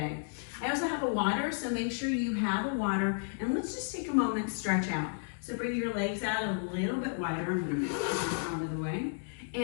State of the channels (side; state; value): right; silent; digital silence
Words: I also have a water, so make sure you have a water, and let's just take a moment to stretch out. So bring your legs out a little bit wider. I'm going to move this out of the way.